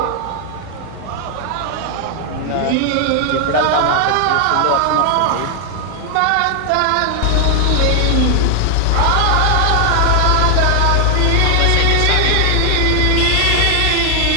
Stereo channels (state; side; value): different; both; correlation 0.00